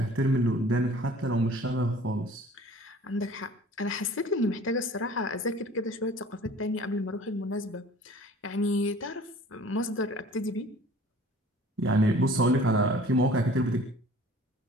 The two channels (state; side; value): normal; both; correlation 0.48